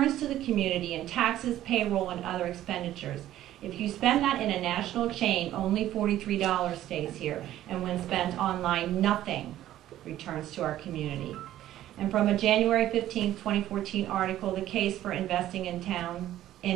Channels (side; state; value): left; quieter; 13.2 dB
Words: to the community in taxes, payroll, and other expenditures. If you spend that in a national chain, only $43 stays here. And when spent online, nothing returns to our community. And from a January 15, 2014 article, The Case for Investing